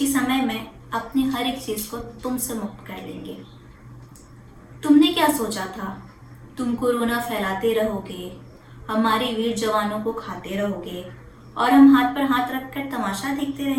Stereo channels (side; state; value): both; identical; correlation 1.00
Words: समय में अपनी हर एक चीज़ को तुमसे मुक्त कर लेंगे। तुमने क्या सोचा था? तुम कोरोना फैलाते रहोगे, हमारे वीर जवानों को खाते रहोगे और हम हाथ पर हाथ रखकर तमाशा देखते